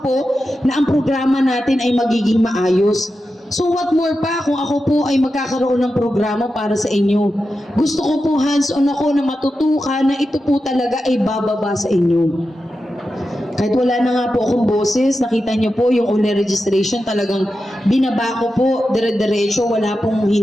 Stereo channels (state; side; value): normal; both; correlation 0.91